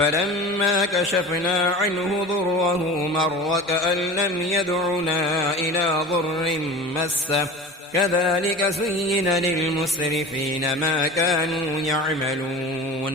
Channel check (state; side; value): normal; both; correlation 0.35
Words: كشفنا عنه ضره مر كأن لم يدعنا إلى ضر مسه كذلك زين للمسرفين ما كانوا